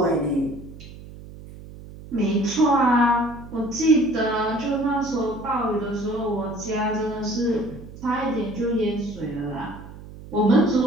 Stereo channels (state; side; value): noise; right; hum, 16 dB below the sound